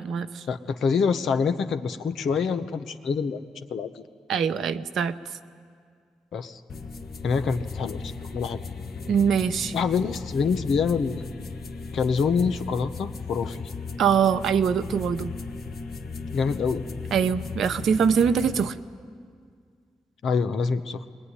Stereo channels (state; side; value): normal; both; correlation 0.69